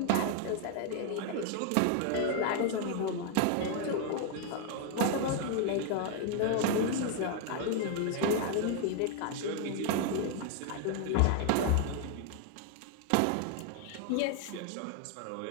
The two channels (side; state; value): both; different; correlation 0.00